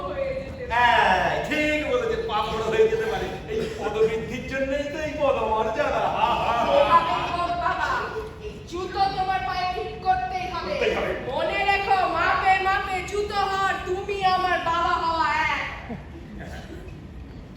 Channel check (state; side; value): identical; both; correlation 1.00